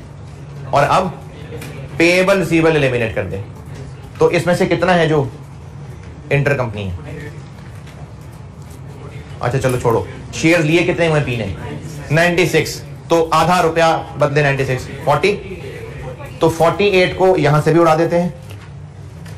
और अब पेएबल रिसीवेबल एलिमिनेट कर दे। तो इसमें से कितना है जो इंटर कंपनी है? अच्छा चलो छोड़ो, शेयर लिए कितने हुए पी ने? 96, तो आधा रुपया बदले 96 40, तो 48 को यहां से भी उड़ा देते हैं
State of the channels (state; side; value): identical; both; correlation 1.00